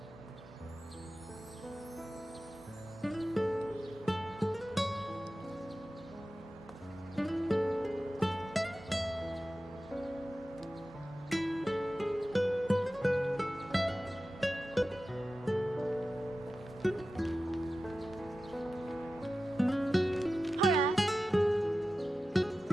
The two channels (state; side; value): normal; both; correlation 0.94